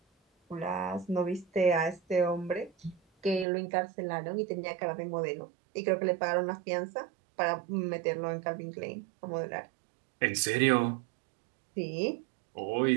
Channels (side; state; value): left; drops out; at 3.5 s